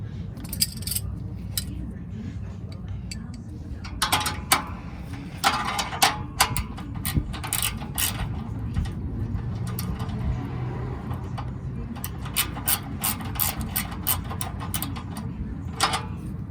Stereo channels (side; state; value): both; identical; correlation 1.00